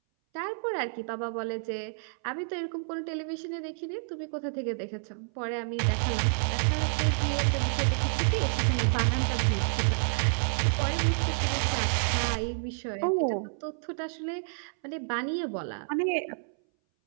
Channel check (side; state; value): left; silent; 58 dB below the other